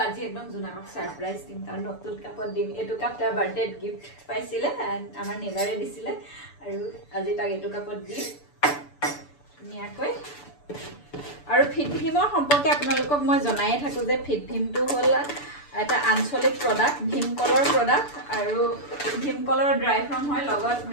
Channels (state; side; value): late; right; 6.9 ms